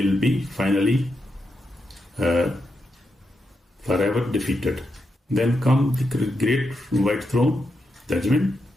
be finally forever defeated. Then come the great white throne, judgment,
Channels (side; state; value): both; normal; correlation 0.85